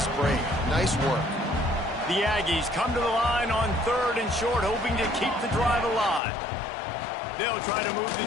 break. Nice work. The Aggies come to the line on 3rd and short, hoping to keep the drive alive. They'll try to move the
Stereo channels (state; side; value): drops out; right; at 6.2 s